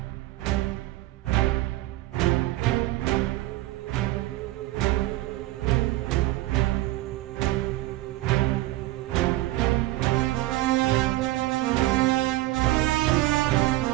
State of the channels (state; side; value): quieter; left; 17.5 dB